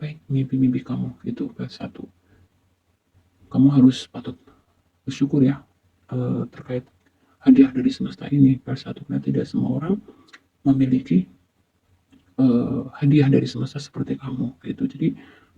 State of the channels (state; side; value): identical; both; correlation 1.00